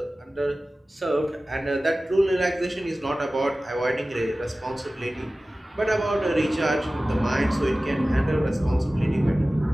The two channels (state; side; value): normal; both; correlation 0.97